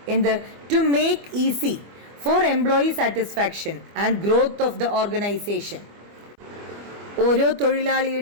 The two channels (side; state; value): left; late; 25 ms